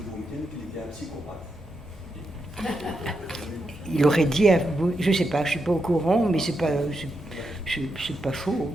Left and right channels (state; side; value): normal; both; correlation 0.84